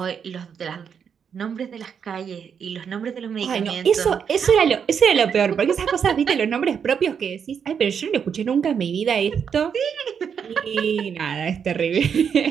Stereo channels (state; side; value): quieter; left; 7.2 dB